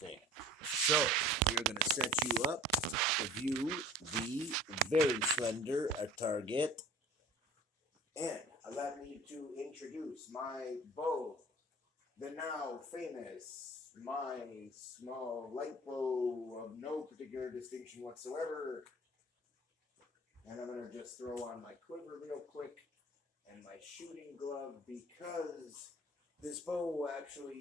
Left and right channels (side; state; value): both; normal; correlation 0.45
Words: So, we're going to set you up to view the very slender target. And allow me to introduce my bow, the now famous, my small light bow of no particular distinction whatsoever. And I'm going to just throw on my quiver real quick and my shooting glove because this bow